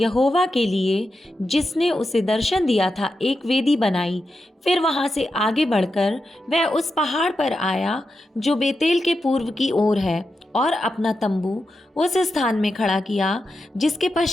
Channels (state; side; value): normal; both; correlation 0.88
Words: के लिए, जिसने उसे दर्शन दिया था, एक वेदी बनाई। फिर वहाँ से आगे बढ़कर वह उस पहाड़ पर आया जो बेतेल के पूर्व की ओर है, और अपना तंबू उस स्थान में खड़ा किया जिसके